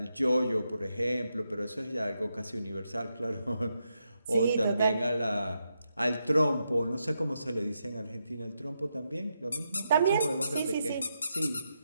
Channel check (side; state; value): both; inverted; correlation -0.83